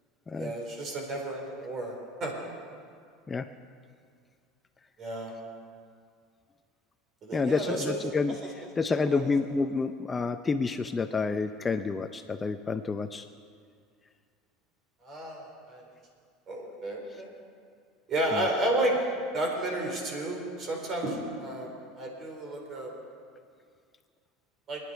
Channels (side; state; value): both; normal; correlation 0.60